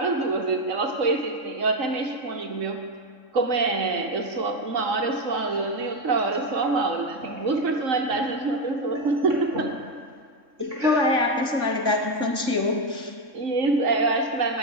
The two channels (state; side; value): late; left; 3.6 ms